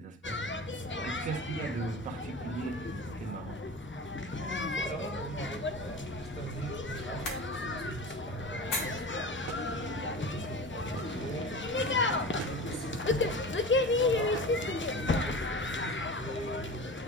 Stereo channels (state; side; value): normal; both; correlation 0.33